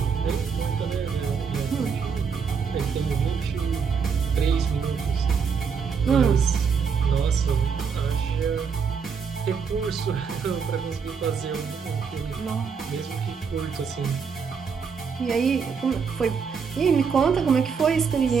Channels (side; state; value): left; quieter; 6.0 dB